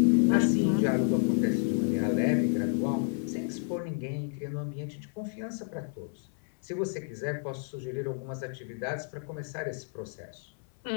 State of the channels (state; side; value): silent; right; 58 dB below the other